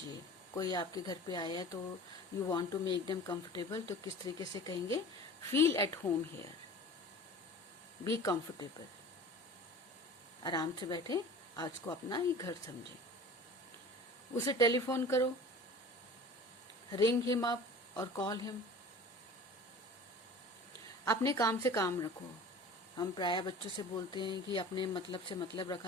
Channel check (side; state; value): both; normal; correlation 0.40